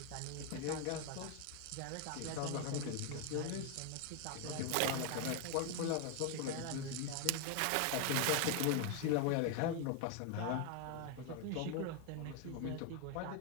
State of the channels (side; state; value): both; different; correlation 0.01